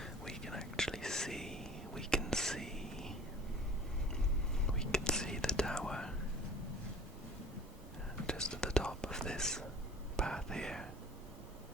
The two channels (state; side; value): normal; both; correlation 0.45